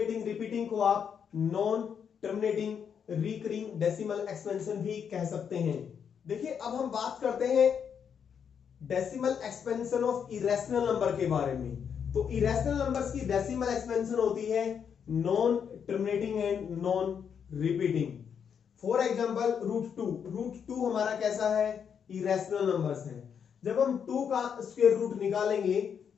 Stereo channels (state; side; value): quieter; right; 7.4 dB